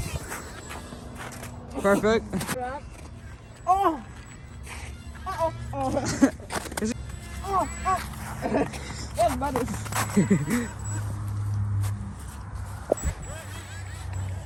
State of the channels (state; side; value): identical; both; correlation 1.00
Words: Perfect. Oh. Oh. Oh. Is it- Oh. Oh. Yes, buddy.